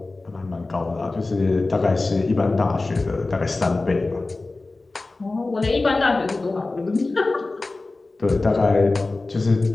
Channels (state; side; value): quieter; right; 3.3 dB